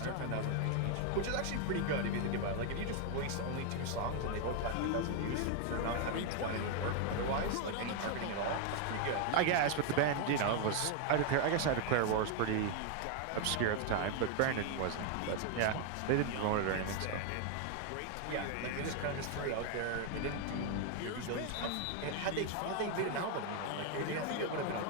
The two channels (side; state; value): both; different; correlation 0.01